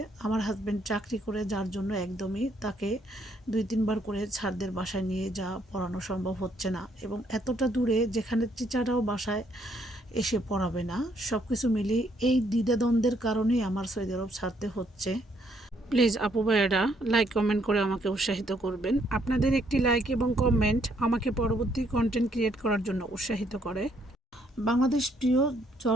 আমার হাজব্যান্ড চাকরি করে, যার জন্য একদমই তাকে 2-3 বার করে ছাড়দের বাসায় নিয়ে যাওয়া পড়ানো সম্ভব হচ্ছে না, এবং এতটা দূরে যেখানে টিচাররাও বাসায় এসে পড়াবে না। সব কিছু মিলিয়ে এই দ্বিধাদ্বন্দ্বের কারণেই আমার সৌদি আরব ছাড়তে হচ্ছে। প্লিজ আপু ভাইয়েরা লাইক কমেন্ট করে আমাকে উৎসাহিত করবেন। আপনাদের একটি লাইক এবং কমেন্ট আমাকে পরবর্তী কন্টেন্ট ক্রিয়েট করার জন্য উৎসাহিত করে। বাংলাদেশ প্রিয়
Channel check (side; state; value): both; normal; correlation 0.70